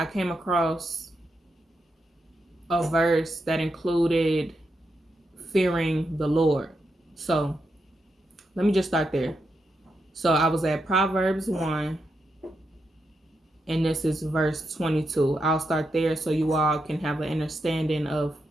came across a verse that included fearing the Lord. So let me just start there. So I was at Proverbs 1, and this is verse 22. I'll start there so you all can have an understanding of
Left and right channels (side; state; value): both; normal; correlation 0.84